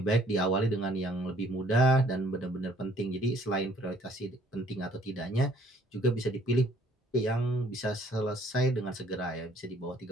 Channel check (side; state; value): both; normal; correlation 0.60